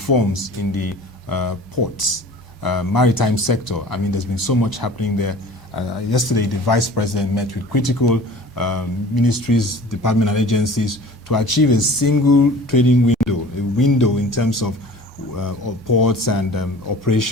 in the ports, maritime sector. I mean, there's been so much happening there. Yesterday, the Vice President met with critical ministries, departments, and agencies to achieve a single trading window, a window in terms of ports and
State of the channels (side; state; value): both; normal; correlation 0.44